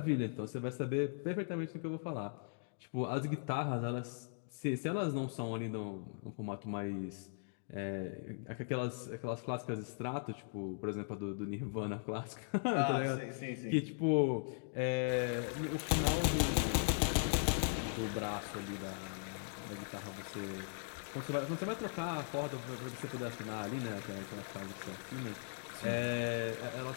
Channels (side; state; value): right; silent; digital silence